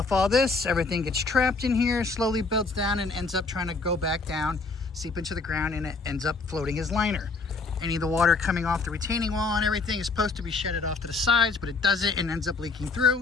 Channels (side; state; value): right; quieter; 4.0 dB